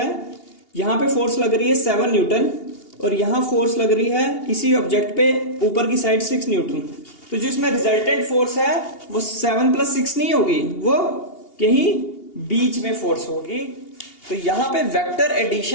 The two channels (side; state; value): right; late; 2.8 ms